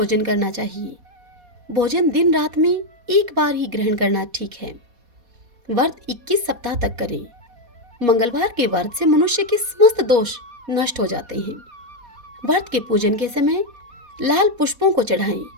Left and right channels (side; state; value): left; late; 4.2 ms